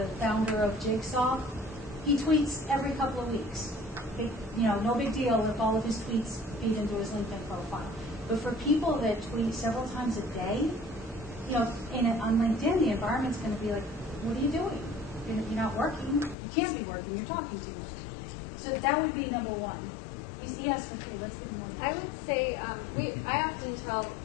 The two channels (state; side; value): drops out; right; at 16.4 s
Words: founder of Jigsaw, he tweets every couple of weeks. No big deal if all of his tweets feed into his LinkedIn profile. But for people that tweet several times a day, on LinkedIn, the environment's going to be like, what are you doing? You're not working. You can't be working. You're talking too much. So that would be number 1. Yes, okay, let's get more. I would say I often tell